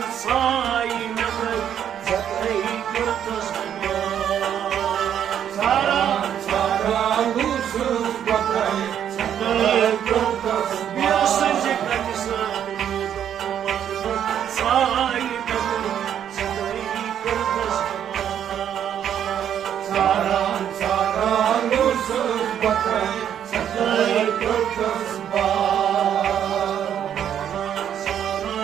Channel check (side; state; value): left; quieter; 9.5 dB